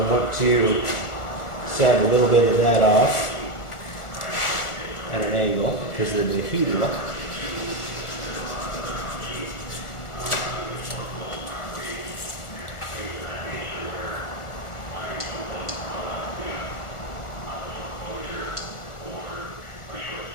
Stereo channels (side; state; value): right; late; 1.4 ms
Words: want to sand a little bit of that off at an angle because of the adhesive.